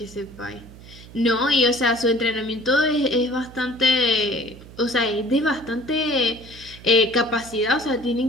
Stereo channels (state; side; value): noise; right; hum, 18 dB below the sound